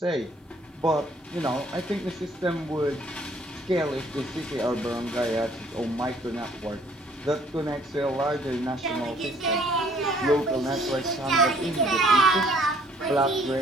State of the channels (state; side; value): normal; both; correlation 0.60